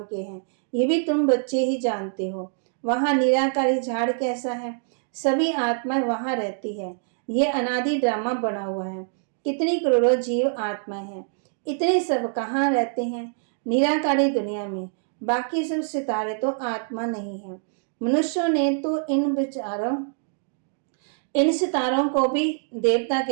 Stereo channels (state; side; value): silent; left; digital silence